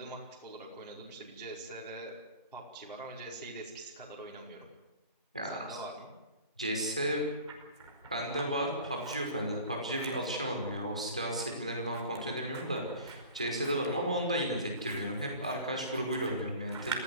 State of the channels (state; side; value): inverted; both; correlation -0.41